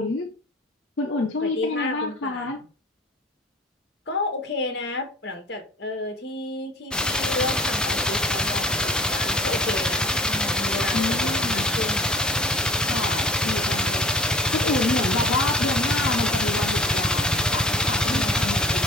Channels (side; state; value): both; normal; correlation 0.45